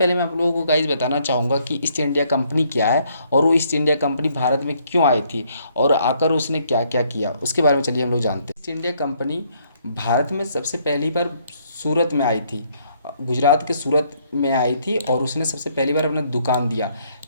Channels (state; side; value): inverted; both; correlation -0.68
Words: मैं आप लोगों को गाइज बताना चाहूँगा कि ईस्ट इंडिया कंपनी क्या है और वो ईस्ट इंडिया कंपनी भारत में क्यों आई थी और आकर उसने क्या क्या किया उसके बारे में चलिए हम लोग जानते हैं। ईस्ट इंडिया कंपनी भारत में सबसे पहली बार सूरत में आई थी, गुजरात के सूरत में आई थी और उसने सबसे पहली बार अपना दुकान दिया।